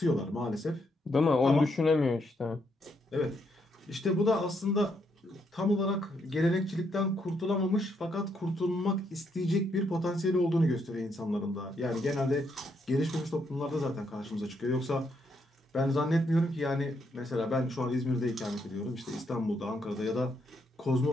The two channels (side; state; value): both; normal; correlation 0.76